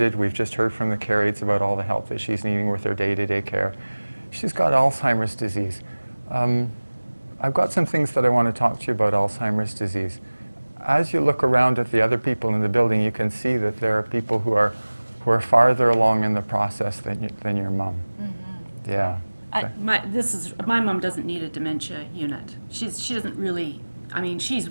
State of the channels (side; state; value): both; inverted; correlation -1.00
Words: We've just heard from the care aides about all the help that she's needing with her day-to-day care. She's got Alzheimer's disease. I've got some things that I want to talk to you about Alzheimer's disease. As you look around at the other people in the building, you can see that there are people who are farther along in the process than your mom. Mm-hmm. Yeah. My mom doesn't need a dementia unit. She doesn't really. I mean, she's